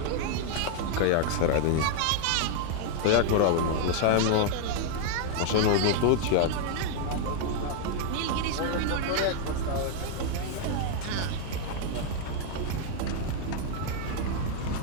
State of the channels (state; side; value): different; both; correlation 0.00